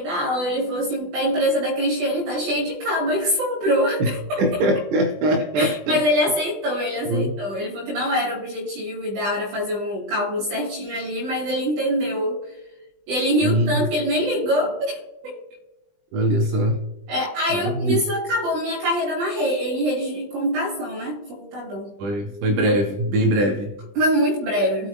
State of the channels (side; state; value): left; late; 20 ms